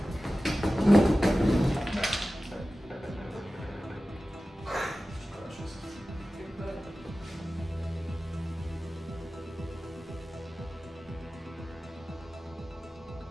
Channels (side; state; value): both; normal; correlation 0.95